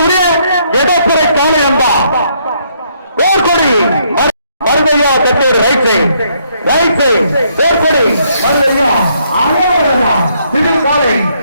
எடப்புறை காலை அம்பா போர்க்கொடி மருதையா கட்டேடு ரைட் சைட் போர்க்கொடி மருதையா சிவில் காலை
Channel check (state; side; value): inverted; both; correlation -0.71